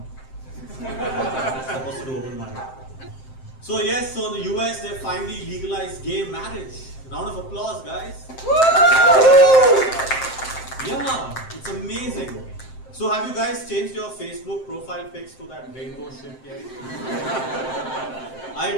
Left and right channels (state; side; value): late; right; 7.6 ms